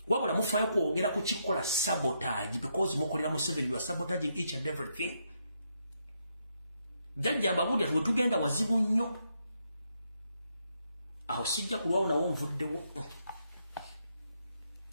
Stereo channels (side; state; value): both; inverted; correlation -0.78